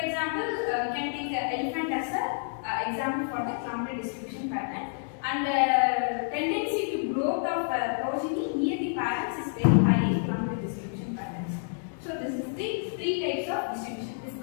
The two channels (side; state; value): right; silent; digital silence